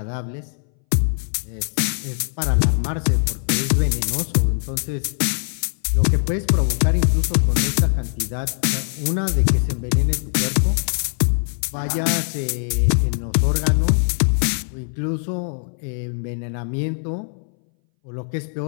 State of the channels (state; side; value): silent; right; 62 dB below the other